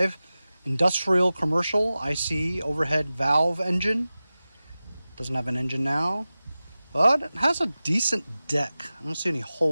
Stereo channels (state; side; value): inverted; both; correlation -0.96